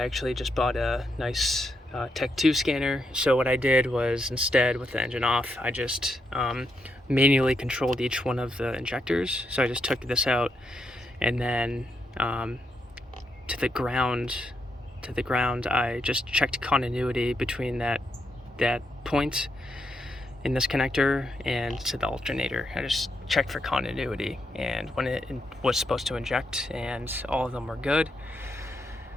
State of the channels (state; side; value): normal; both; correlation 0.81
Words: just bought a nice Tech 2 scanner. So what I did was, instead, with the engine off, I just manually controlled each one of the injectors. So I just took this out, and then to the ground, I just checked continuity between that point in this connector and to the alternator. I just checked for continuity, and when it was supposed to inject, and all of them were good.